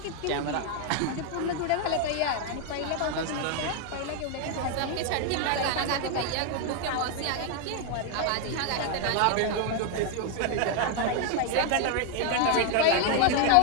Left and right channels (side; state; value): both; different; correlation 0.00